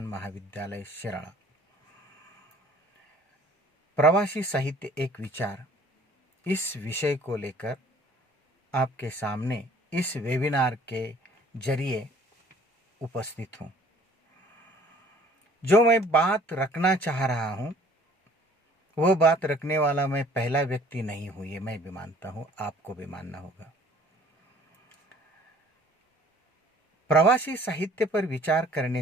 महाविद्यालय शिराळा. प्रवासी साहित्य एक विचार, इस विषय को लेकर आपके सामने इस वेबिनार के जरिए उपस्थित हूँ. जो मैं बात रखना चाह रहा हूँ वह बात रखने वाला मैं पहला व्यक्ति नहीं हूँ, ये मैं भी मानता हूँ, आपको भी मानना होगा. प्रवासी साहित्य पर विचार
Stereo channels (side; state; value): both; normal; correlation 0.54